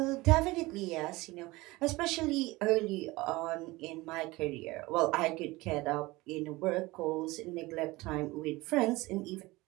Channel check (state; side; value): quieter; left; 21.0 dB